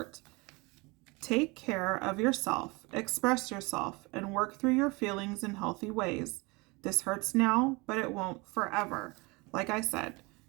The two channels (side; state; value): left; quieter; 26.1 dB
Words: take care of yourself, express yourself, and work through your feelings in healthy ways. This hurts now, but it won't forever. Like I said,